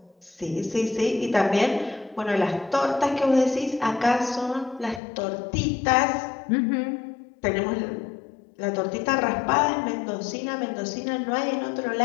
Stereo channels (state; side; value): drops out; right; at 5.0 s